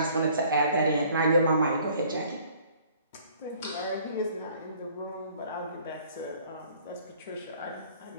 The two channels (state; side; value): inverted; both; correlation -0.56